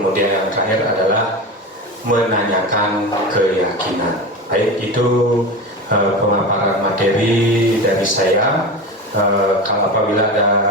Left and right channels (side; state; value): both; normal; correlation 0.25